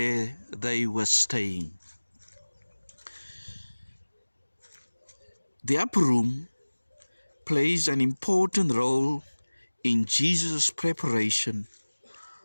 they were staying. The upper room plays an important role in Jesus' preparation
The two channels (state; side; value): inverted; both; correlation -1.00